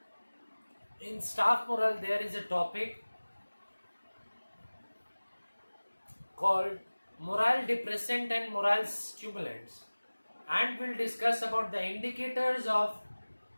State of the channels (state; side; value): inverted; both; correlation -1.00